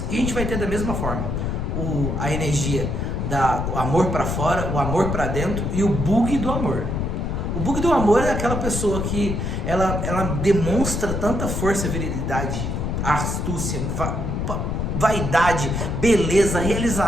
E a gente vai ter da mesma forma a energia do amor para fora, o amor para dentro e o bug do amor. O bug do amor é aquela pessoa que ela demonstra tanta força, virilidade, astúcia, vaidade, beleza,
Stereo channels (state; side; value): noise; left; rumble, 1 dB below the sound